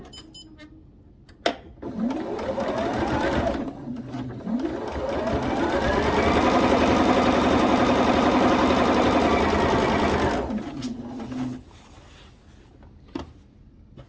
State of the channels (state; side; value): identical; both; correlation 1.00